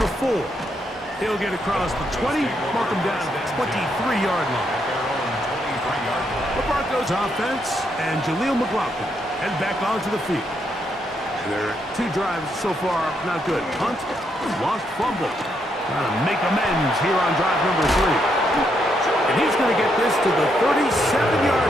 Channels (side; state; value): both; normal; correlation 0.77